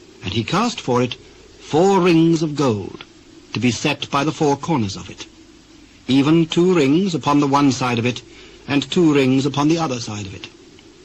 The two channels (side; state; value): both; identical; correlation 1.00